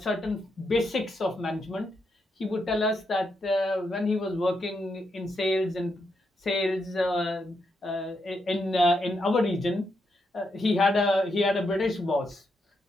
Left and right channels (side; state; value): both; normal; correlation 0.81